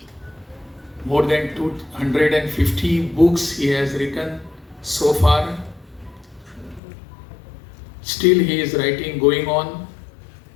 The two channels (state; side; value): drops out; right; at 6.8 s